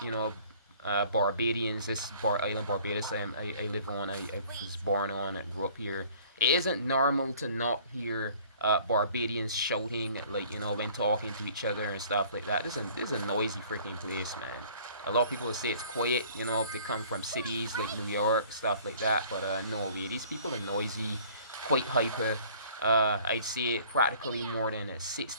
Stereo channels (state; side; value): inverted; both; correlation -0.53